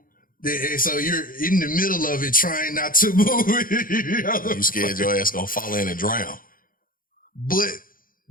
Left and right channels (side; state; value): right; late; 0.41 ms